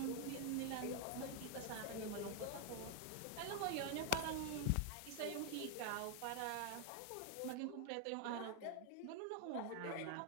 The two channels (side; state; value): both; different; correlation 0.00